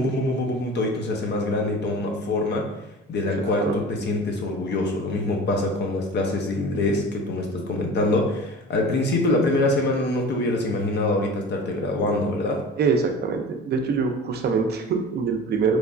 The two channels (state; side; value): normal; both; correlation 0.37